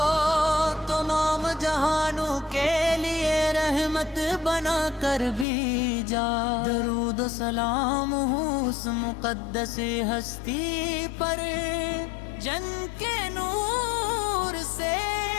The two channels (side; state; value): right; drops out; at 5.5 s